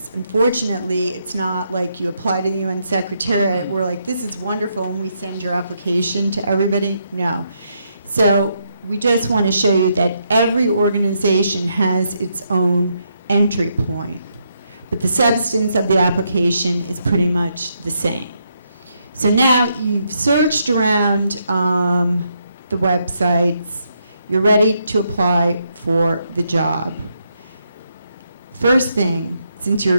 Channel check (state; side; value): inverted; both; correlation -0.78